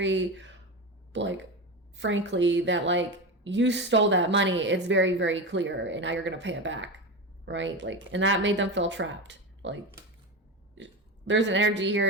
like, frankly, that, like, you stole that money. It's very, very clear, and now you're going to pay it back, right? Like, and that made them feel trapped. Like, there's an energy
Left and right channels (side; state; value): both; normal; correlation 0.20